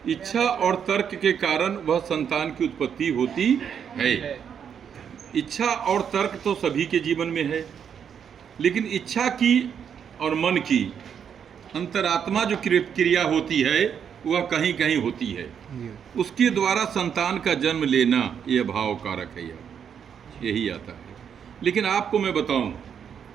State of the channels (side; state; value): left; quieter; 7.8 dB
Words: इच्छा और तर्क के कारण वह संतान की उत्पत्ति होती है। इच्छा और तर्क तो सभी के जीवन में है, लेकिन इच्छा की और मन की अंतरात्मा जो क्रिया होती है वह कहीं कहीं होती है। उसके द्वारा संतान का जन्म लेना यह भाव कारक है, यही आता है। लेकिन आपको मैं बताऊं,